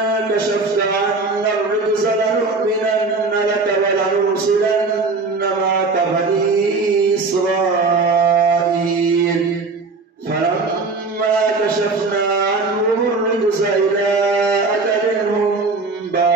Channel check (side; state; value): left; quieter; 3.9 dB